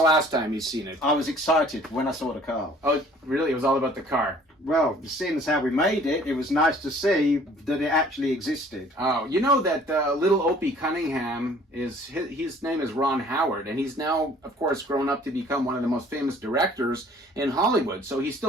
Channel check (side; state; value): both; normal; correlation 0.54